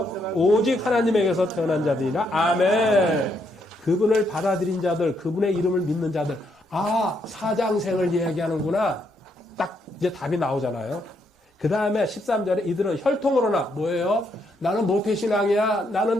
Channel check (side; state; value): both; normal; correlation 0.75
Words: 오직 하나님에게서 태어난 자들이라. 아멘. 그분을 받아들인 자들, 그분의 이름을 믿는 자들. 아, 사장생을 이야기하는구나. 딱 이제 답이 나오잖아요. 그 다음에 13절에 이들은 혈통으로나 뭐예요? 나는 모태신앙이야.